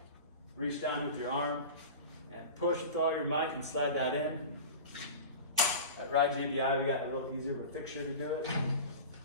reach down with your arm, and push with all your might and slide that in. At Ride JBI, we got a little easier of a fixture to do it.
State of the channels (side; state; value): both; inverted; correlation -0.32